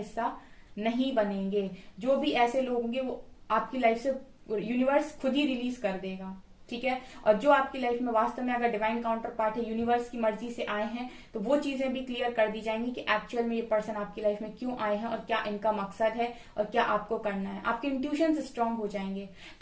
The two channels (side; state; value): both; identical; correlation 1.00